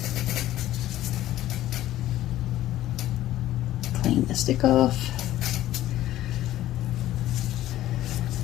Clean the stick off.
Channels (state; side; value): quieter; right; 14.0 dB